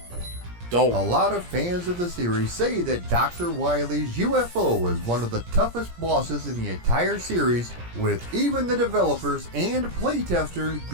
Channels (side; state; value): left; late; 17 ms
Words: Dope. A lot of fans of the series say that Dr. Wily's UFO is one of the toughest bosses in the entire series, with even the developers and playtesters